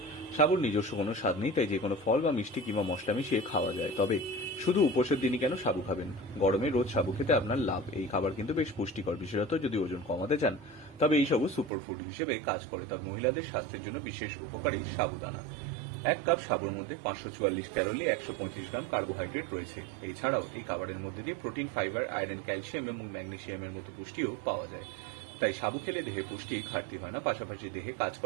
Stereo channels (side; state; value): left; drops out; at 11.7 s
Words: সাবুর নিজস্ব কোনো স্বাদ নেই, তাই যে কোনো ফল বা মিষ্টি কিংবা মশলা মিশিয়ে খাওয়া যায়। তবে শুধু উপোসের দিনই কেন সাবু খাবেন? গরমে রোজ সাবু খেতে আপনার লাভ। এই খাবার কিন্তু বেশ পুষ্টিকর, বিশেষত যদি ওজন কমাতে চান। তবে এই সাবু সুপারফুড হিসেবে কাজ করে। তবে মহিলাদের স্বাস্থ্যের জন্য বিশেষ উপকারী সাবুদানা। 1 কাপ সাবুর মধ্যে 544 ক্যালোরি, 135 গ্রাম কার্বোহাইড্রেট রয়েছে। এছাড়াও এই খাবারের মধ্যে দিয়ে প্রোটিন, ফাইবার, আয়রন, ক্যালসিয়াম এবং ম্যাগনেসিয়ামের মতো পুষ্টিও পাওয়া যায়। তাই সাবু খেলে দেহে পুষ্টির ঘাটতি হয় না, পাশাপাশি দেহে কাজ